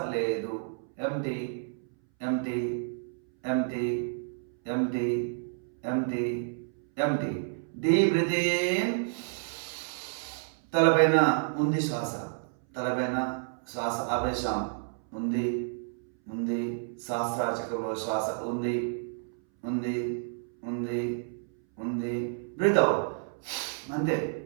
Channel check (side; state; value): left; silent; 58 dB below the other